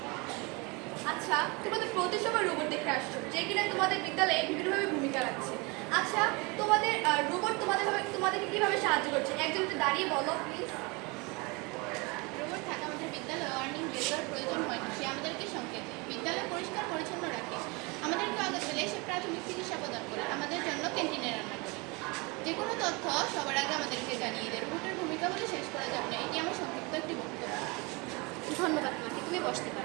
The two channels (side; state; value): left; quieter; 27.7 dB